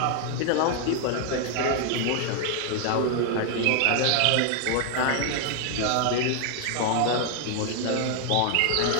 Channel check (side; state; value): both; different; correlation 0.00